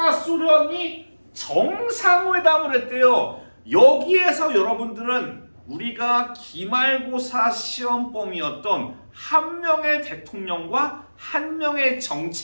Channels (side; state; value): both; inverted; correlation -1.00